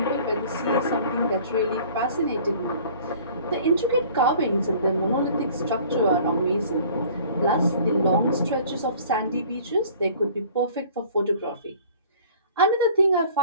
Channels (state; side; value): inverted; both; correlation -0.50